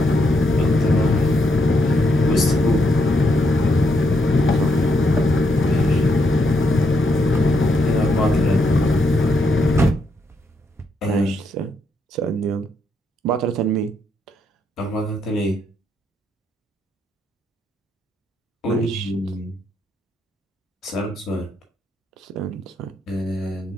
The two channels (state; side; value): normal; both; correlation 0.78